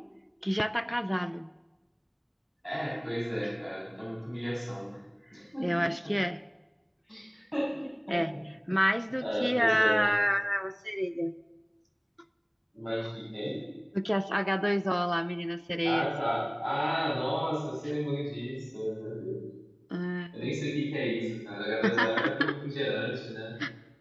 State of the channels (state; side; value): identical; both; correlation 1.00